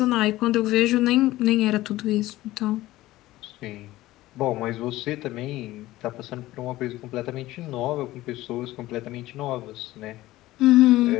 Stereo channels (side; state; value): right; quieter; 16.8 dB